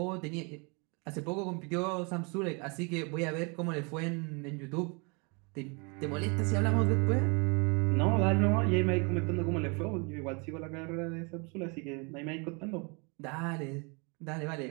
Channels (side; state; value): left; quieter; 32.0 dB